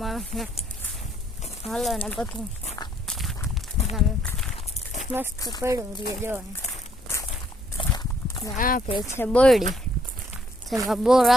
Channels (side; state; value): both; normal; correlation 0.68